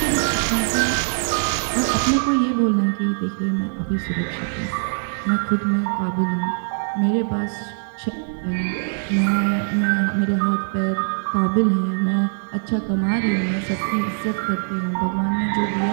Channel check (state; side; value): silent; left; digital silence